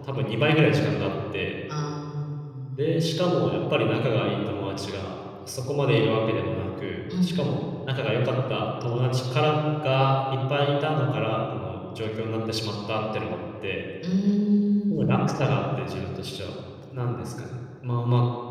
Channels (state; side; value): identical; both; correlation 1.00